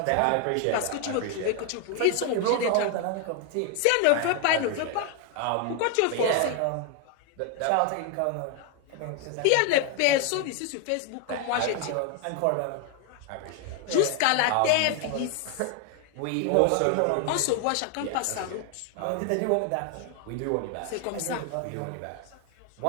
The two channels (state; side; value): different; both; correlation 0.01